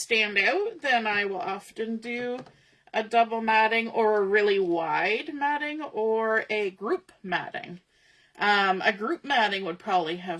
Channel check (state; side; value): identical; both; correlation 1.00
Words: out, then I will often do a double matting or a really wide matting or a group matting. A group matting would probably